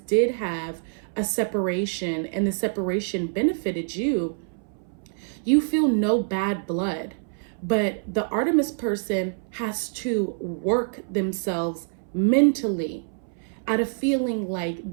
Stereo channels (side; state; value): left; silent; 61 dB below the other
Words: have a separation and the separation benefited you, you feel no bad blood. But the Artemis person has to work themselves mentally out of feeling like